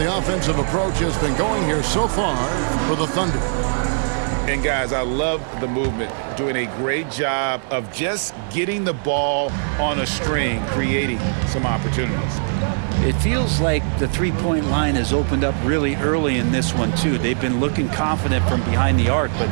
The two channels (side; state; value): left; silent; digital silence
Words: offensive approach has been going here so far for the Thunder. And guys, I love the movement, doing a great job of just getting the ball on a string, creating some opportunities. It feels like the three-point line has opened up really early in this one, too. They've been looking confident from behind the arc, but